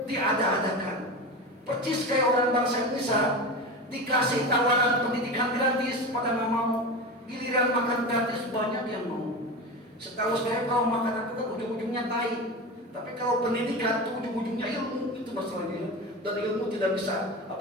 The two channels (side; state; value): both; normal; correlation 0.25